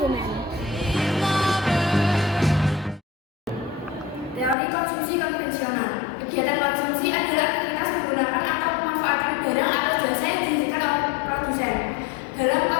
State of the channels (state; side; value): drops out; right; at 4.5 s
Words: Teori konsumsi konvensional. Kegiatan konsumsi adalah aktivitas menggunakan atau memanfaatkan barang atau jasa yang dihasilkan oleh produsen. Dalam